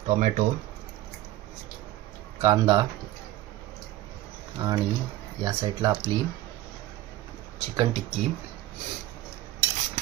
टोमॅटो, कांदा आणि या साईडला आपली चिकन टिक्की.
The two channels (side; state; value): left; quieter; 15.4 dB